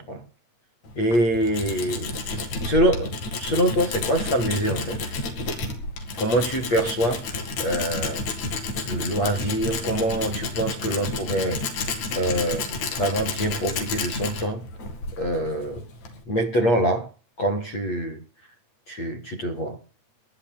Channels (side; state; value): right; late; 9.0 ms